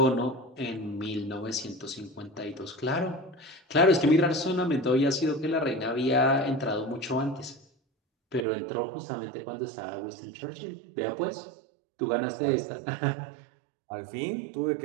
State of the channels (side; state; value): left; drops out; at 8.5 s